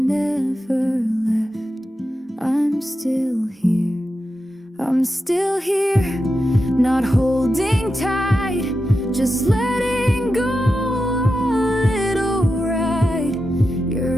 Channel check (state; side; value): normal; both; correlation 0.89